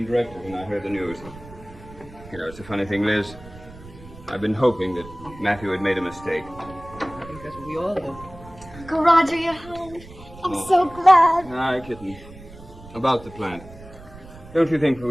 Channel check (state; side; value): noise; right; rumble, 18 dB below the sound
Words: directly when I heard the news. You know, it's a funny thing, Liz. I've been hoping that Matthew had made a mistake. I think that's what we all do. Uncle Roger, you're home. I'm so glad. Aye, kitten. About the plant. Don't you think